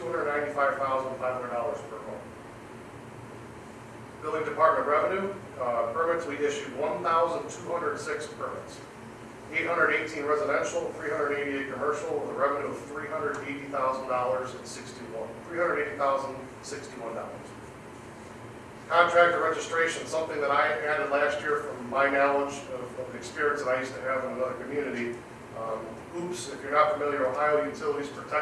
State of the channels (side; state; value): both; identical; correlation 1.00